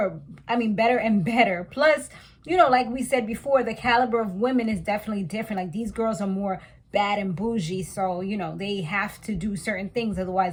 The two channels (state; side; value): identical; both; correlation 1.00